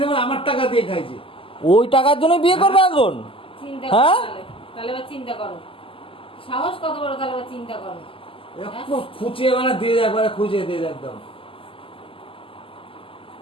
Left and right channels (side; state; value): right; late; 0.26 ms